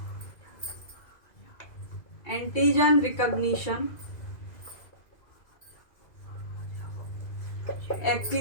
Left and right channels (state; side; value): late; right; 2.5 ms